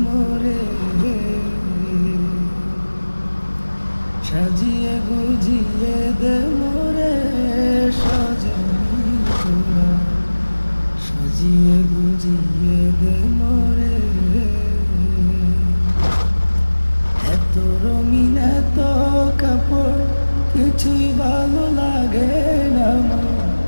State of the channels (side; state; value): both; inverted; correlation -1.00